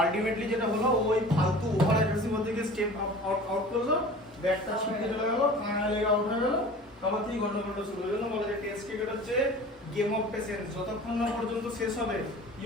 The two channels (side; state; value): both; normal; correlation 0.41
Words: যেটা হলো ওই ফালতু ওভার অ্যাগ্রেসিভ থেকে স্টেপ আউট করলো, ব্যাটটা ছিটকে চলে গেল, কানা লেগে আউট হয়ে গেল, তারপর থেকে গন্ডগোলটা শুরু হয়ে গেল। বলে যে টেস্ট ক্রিকেট হচ্ছে গেম অফ পেশেন্স, যতক্ষণ না পর্যন্ত শেষ হবে